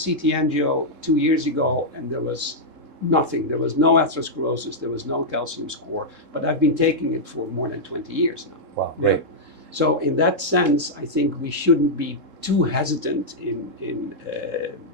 CT angio 2 years ago, and there was nothing. There was no atherosclerosis, there was no calcium score, but I've been taking it for more than 20 years now. Wow, Yeah. great. So in that sense, I think we shouldn't be too hesitant in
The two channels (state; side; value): late; left; 3.7 ms